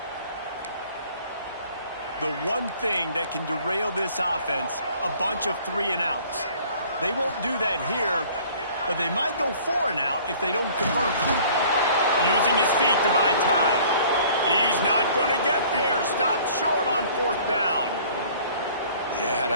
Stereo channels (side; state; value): both; inverted; correlation -0.52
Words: The one thing that can derail this offense, a bunch of 3 and outs. They won't do that here, but they might go 4 and out if they don't convert. Using his feet to buy time. He's not going to get there. Stopped short on fourth down. Yeah, and